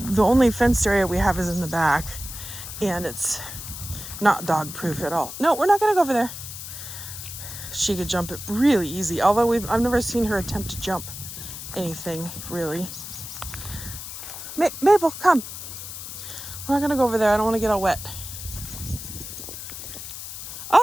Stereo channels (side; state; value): left; noise; hiss, 10 dB below the sound